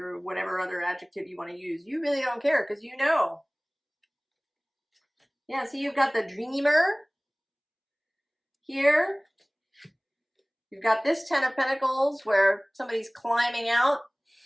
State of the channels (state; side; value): identical; both; correlation 1.00